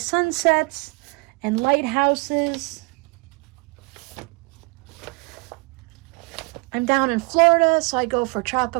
and lighthouses. I'm down in Florida, so I go for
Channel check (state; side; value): quieter; left; 30.2 dB